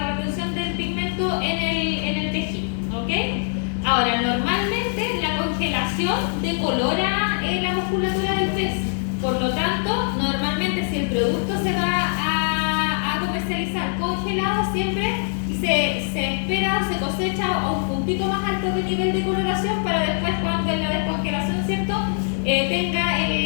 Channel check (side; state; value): right; silent; 64 dB below the other